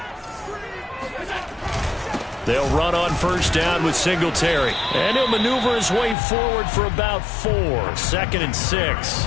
They'll run on first down with Singletary. And he'll maneuver his way forward for about 4. 2nd and 6.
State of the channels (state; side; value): drops out; right; at 6.2 s